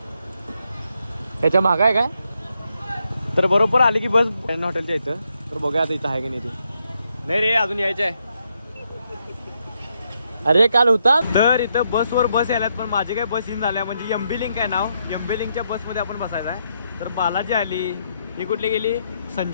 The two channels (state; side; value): inverted; both; correlation -0.78